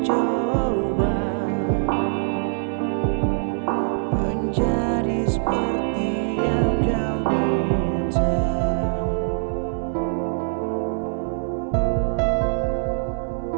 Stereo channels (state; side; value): silent; left; 63 dB below the other